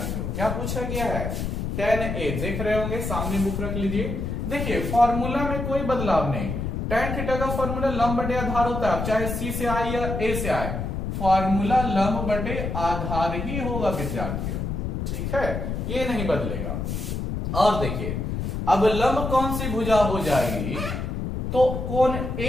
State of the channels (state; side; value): noise; left; rumble, 3 dB below the sound